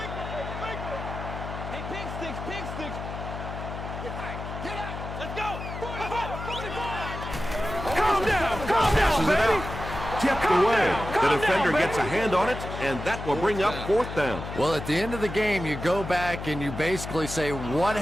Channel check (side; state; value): left; noise; hum, 8 dB below the sound